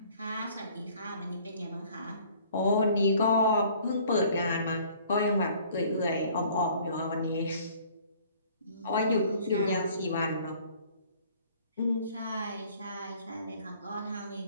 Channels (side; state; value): both; inverted; correlation -0.55